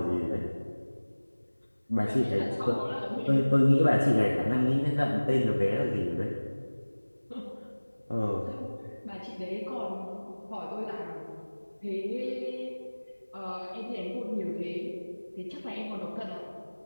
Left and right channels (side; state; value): both; inverted; correlation -1.00